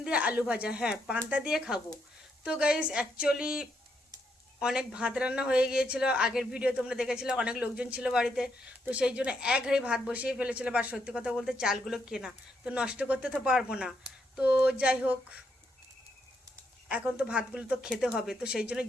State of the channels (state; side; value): normal; both; correlation 0.78